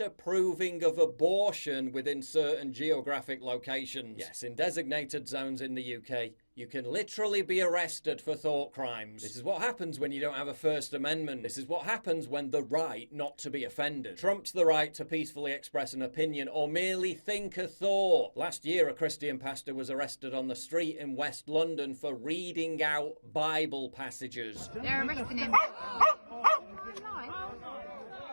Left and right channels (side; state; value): both; inverted; correlation -1.00